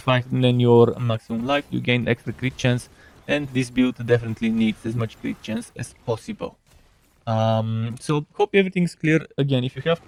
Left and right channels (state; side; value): identical; both; correlation 1.00